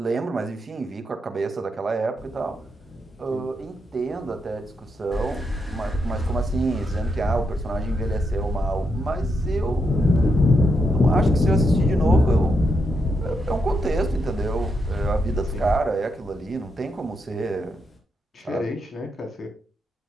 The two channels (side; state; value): both; normal; correlation 0.82